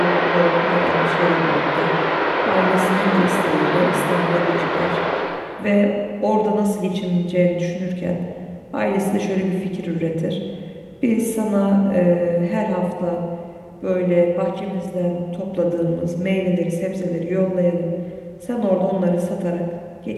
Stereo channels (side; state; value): both; identical; correlation 1.00